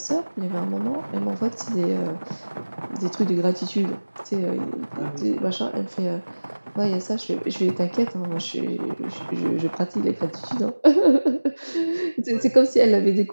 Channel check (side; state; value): both; inverted; correlation -1.00